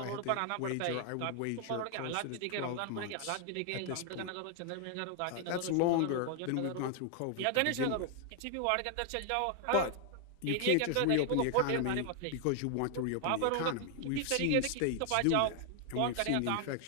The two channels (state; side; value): different; both; correlation 0.00